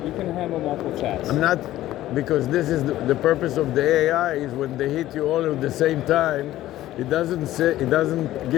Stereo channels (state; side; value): quieter; right; 14.5 dB